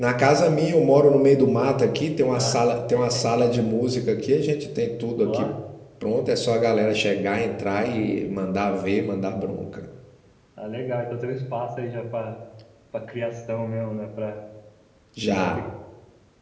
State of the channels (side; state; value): both; identical; correlation 1.00